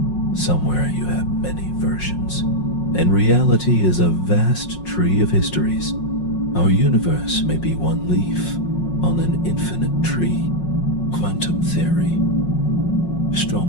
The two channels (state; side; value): late; right; 5.5 ms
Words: Somewhere you have many versions, and reality is a vast tree of histories. Our universe may be one leaf on an infinite tree. Quantum theory